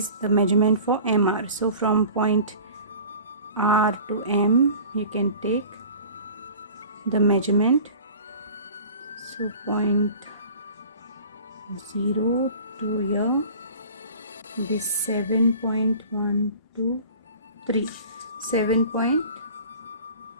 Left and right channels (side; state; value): both; inverted; correlation -0.42